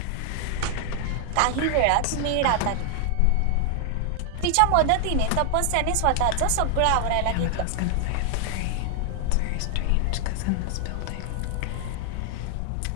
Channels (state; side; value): different; both; correlation 0.00